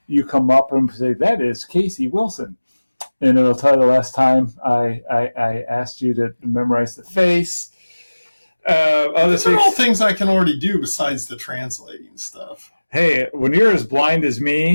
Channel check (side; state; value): both; inverted; correlation -1.00